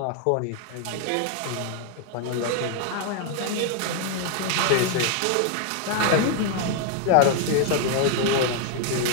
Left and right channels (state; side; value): different; both; correlation 0.00